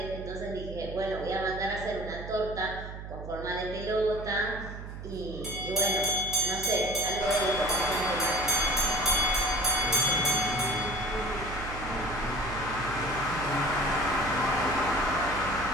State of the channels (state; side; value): noise; right; hum, 10 dB below the sound